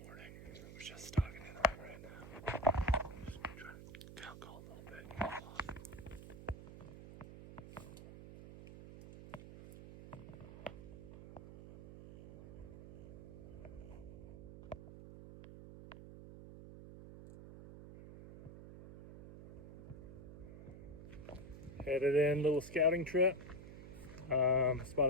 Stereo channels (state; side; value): noise; right; hum, 13 dB below the sound